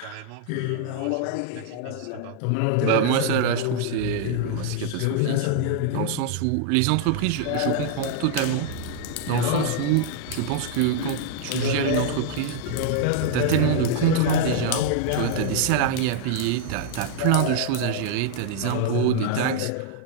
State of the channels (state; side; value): different; both; correlation 0.00